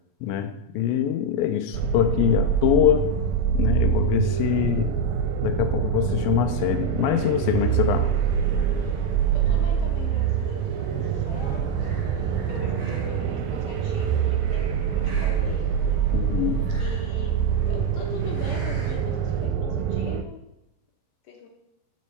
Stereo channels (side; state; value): both; normal; correlation 0.03